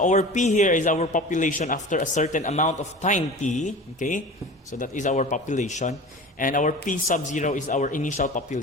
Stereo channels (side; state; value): both; normal; correlation 0.36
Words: our P here is our population after a certain amount of time t, okay? So that is our population. And our P sub 0 is our initial